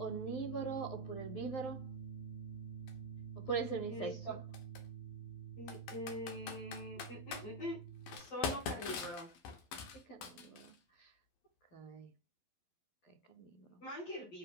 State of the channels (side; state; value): right; late; 12 ms